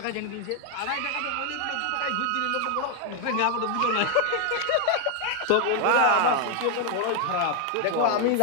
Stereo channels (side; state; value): both; different; correlation 0.01